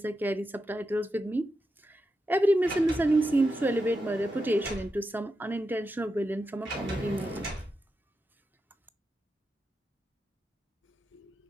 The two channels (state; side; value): normal; both; correlation 0.88